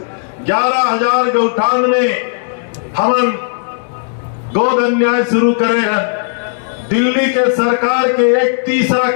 11,000 गौठान में हम गोधन न्याय शुरू करे हैं। दिल्ली के सरकार के एक तीसरा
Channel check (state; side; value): silent; right; digital silence